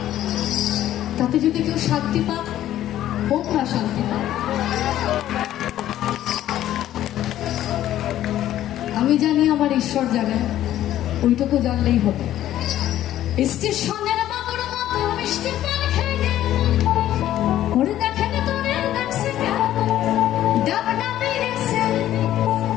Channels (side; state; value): right; quieter; 12.7 dB